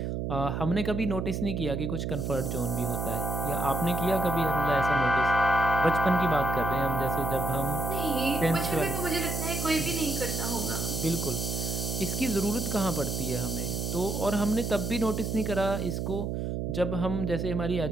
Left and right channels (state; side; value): noise; right; hum, 2 dB below the sound